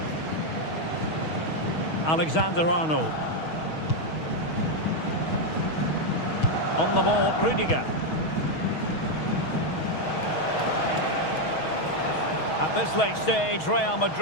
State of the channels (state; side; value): late; right; 6.3 ms